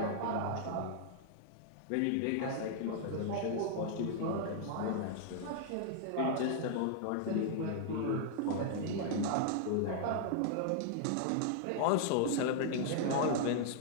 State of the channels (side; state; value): both; different; correlation -0.01